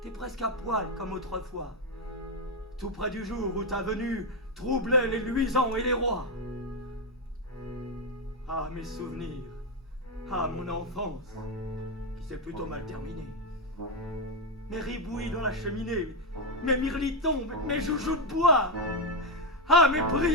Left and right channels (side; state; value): both; normal; correlation 0.05